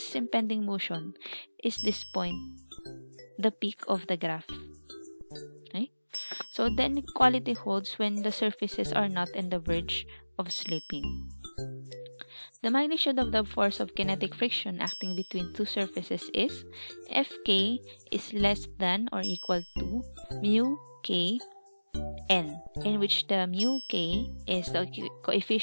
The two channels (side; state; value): both; inverted; correlation -1.00